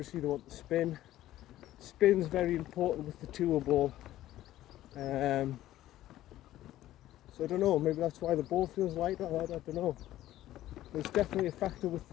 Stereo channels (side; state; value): right; quieter; 14.1 dB